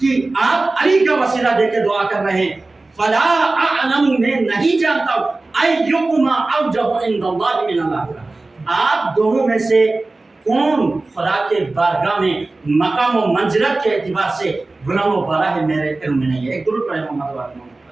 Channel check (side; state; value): left; quieter; 3.2 dB